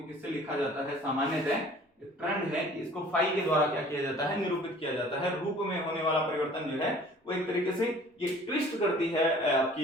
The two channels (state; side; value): normal; both; correlation 0.50